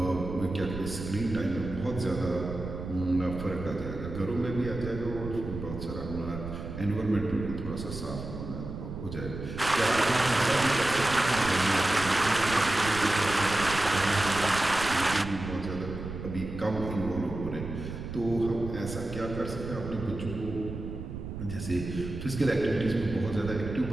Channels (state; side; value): noise; right; rumble, 8 dB below the sound